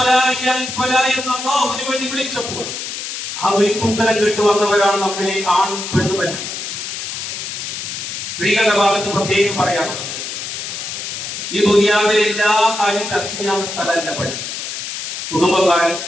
എന്ന് അല്ലാഹുവിന് വേണ്ടി വിളിച്ചപ്പോൾ ആ വിളിക്കുത്തരം കേട്ട് വന്നവരാണ് നമ്മിലെ ആണും പെണ്ണുമല്ല. സ്ത്രീകളുടെ ഭാഗത്ത് പ്രത്യേകം പറയാറുള്ളത്, ഈ ദുനിയാവിലെ എല്ലാ കാര്യം ചർച്ച ചെയ്യാവുന്ന സ്ഥലമല്ല പള്ളി. കുടുംബക്കാരും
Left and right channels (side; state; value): left; noise; hiss, 6 dB below the sound